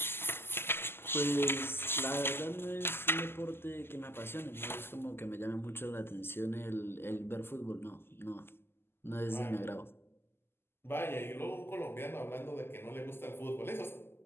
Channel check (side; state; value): right; late; 0.11 ms